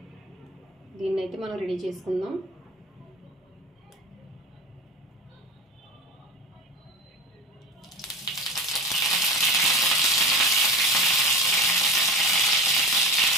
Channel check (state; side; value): normal; both; correlation 0.31